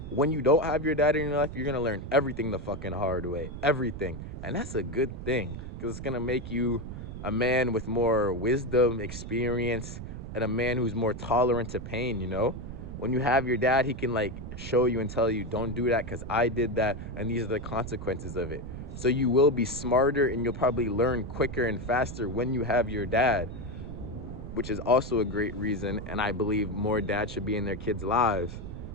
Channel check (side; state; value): right; noise; rumble, 9 dB below the sound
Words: When you don't have your dad in your life, you're gonna learn everything the fucking hard way. Everything. And that's a good thing. Because it's gonna make you a man with more wisdom, experience, and a man who's more tolerant to pain, you know? When you have your dad, he can like show you and tell you, don't do that because I did that and these are the consequences of it. So you will be smarter and you'll probably learn quicker and faster when you have your dad, which is also a great reason. And I believe more dads should be in their kids' lives.